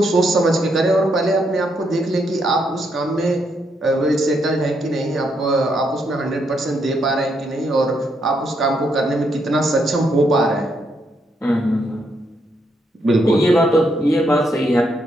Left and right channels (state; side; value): normal; both; correlation 0.77